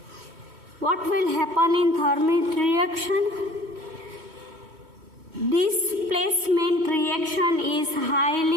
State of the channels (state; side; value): late; left; 3.1 ms